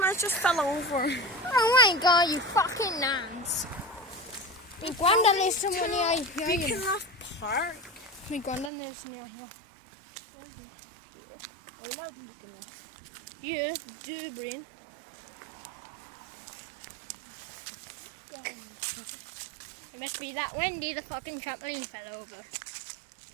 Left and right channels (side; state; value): left; drops out; at 8.7 s